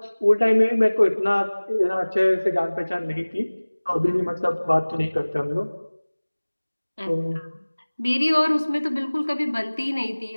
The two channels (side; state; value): both; inverted; correlation -1.00